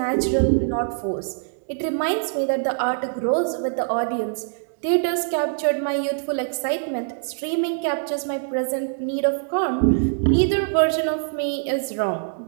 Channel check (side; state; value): left; silent; digital silence